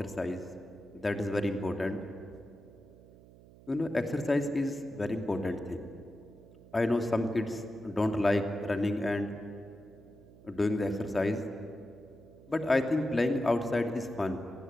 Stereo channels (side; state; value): right; noise; hum, 22 dB below the sound